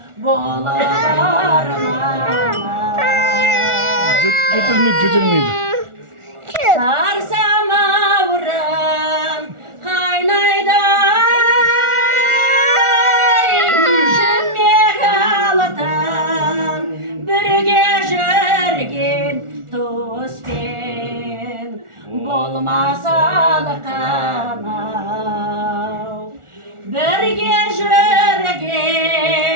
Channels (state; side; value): late; left; 1.4 ms